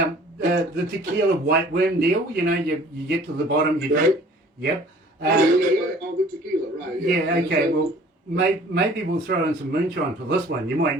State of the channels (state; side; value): normal; both; correlation 0.51